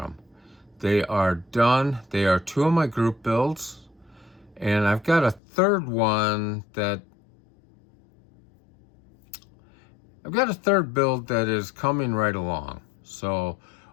They are done. They are two of my group builds, and I've got a third one that build that is coming right along. So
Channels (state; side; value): drops out; right; at 5.4 s